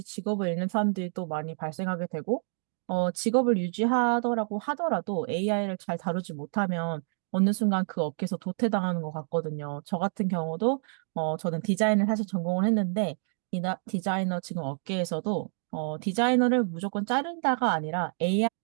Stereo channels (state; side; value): silent; left; digital silence